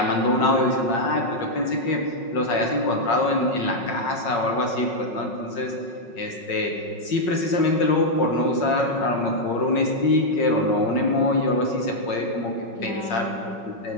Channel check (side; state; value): right; late; 5.5 ms